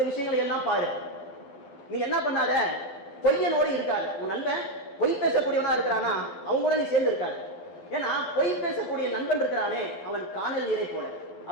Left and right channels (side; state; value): right; late; 12 ms